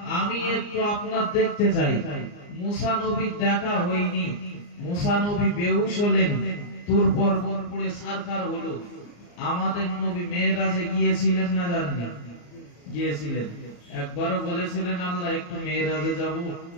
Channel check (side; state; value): right; late; 34 ms